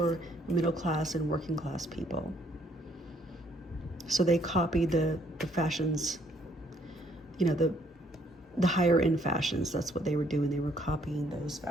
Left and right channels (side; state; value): both; normal; correlation 0.66